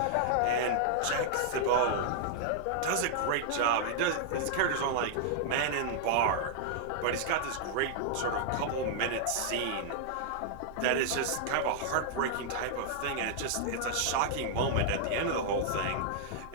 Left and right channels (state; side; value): different; both; correlation -0.01